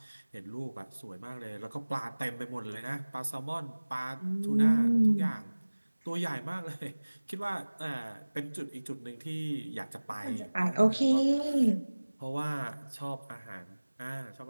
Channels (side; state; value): both; inverted; correlation -1.00